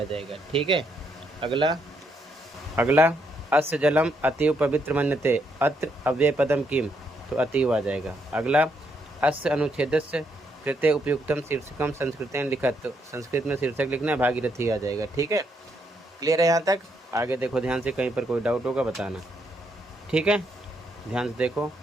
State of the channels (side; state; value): both; normal; correlation 0.76